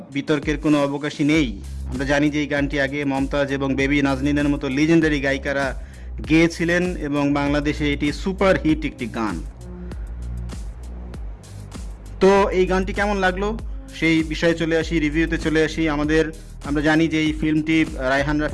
বিতর্কের কোনো অবকাশই নেই। আমরা জানি যে এই গানটি আগে মমতাজ এবং বেবি নাজনীনের মতো লিজেন্ডারি গায়িকারা গেয়েছিলেন এবং বাংলাদেশে এটি সুপার হিট একটি গান। তো এই গানটি কেমন লাগলো সেই বিষয়ে চলে আসি, রিভিউতে চলে আসি। আমরা জানি যে এই ফিল্মটি রায়হান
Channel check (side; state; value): both; identical; correlation 1.00